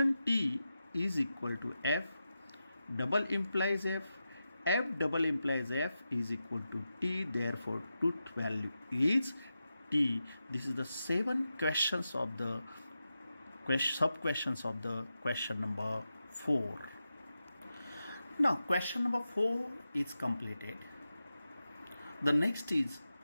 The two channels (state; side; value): inverted; both; correlation -0.90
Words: T is equal to F, double implies F, F double implies F is equal to T, therefore truth value is T. This is the 7 questions of the sub questions of the question number 4. Now question number 4 is completed. The next is